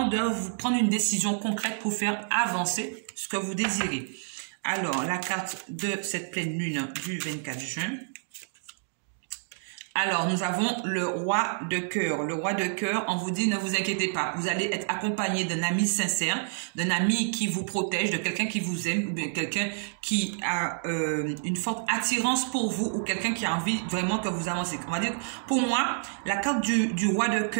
de vous prendre une décision concrète pour faire avancer ce que vous désirez. Alors, la carte de cette pleine lune du 24 juin. Alors, nous avons le roi de cœur. Le roi de cœur, on vous dit, ne vous inquiétez pas. Vous allez être accompagné d'un ami sincère, d'un ami qui vous protège, de quelqu'un qui vous aime, ou bien quelqu'un qui a une forte attirance pour vous, ou quelqu'un qui a envie vraiment que vous avancez. On va dire, pour moi, la carte du roi de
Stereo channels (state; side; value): silent; left; digital silence